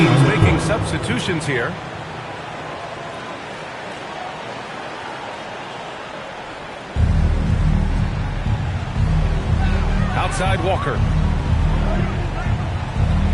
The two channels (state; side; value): identical; both; correlation 1.00